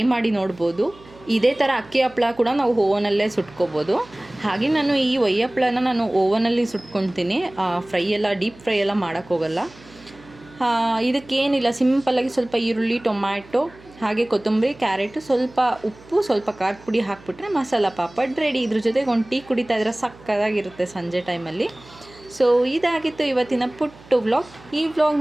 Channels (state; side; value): noise; right; hum, 23 dB below the sound